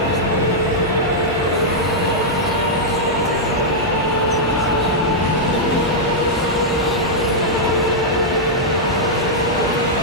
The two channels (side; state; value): both; normal; correlation -0.06